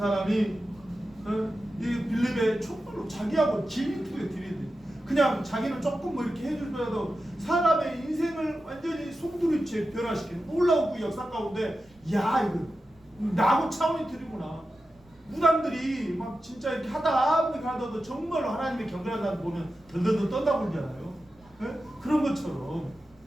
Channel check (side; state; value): right; noise; rumble, 30 dB below the sound